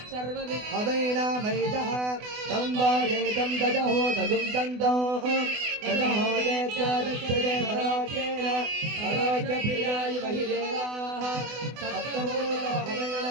सर्वविद्भवैनामैतः तं वायेतं दजहो तगुं तन्तौ दजहो देत्यादक्षते परोक्षेण परोक्षप्रियाय महिदेवाः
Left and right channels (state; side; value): late; left; 24 ms